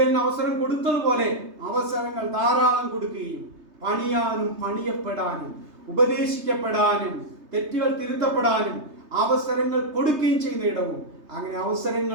അവസരം കൊടുത്തതുപോലെ അവസരങ്ങൾ ധാരാളം കൊടുക്കുകയും പണിയാനും പണിയപ്പെടാനും ഉപദേശിക്കപ്പെടാനും തെറ്റുകൾ തിരുത്തപ്പെടാനും അവസരങ്ങൾ കൊടുക്കുകയും ചെയ്യുന്ന ഇടവും, അങ്ങനെ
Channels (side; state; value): left; late; 3.3 ms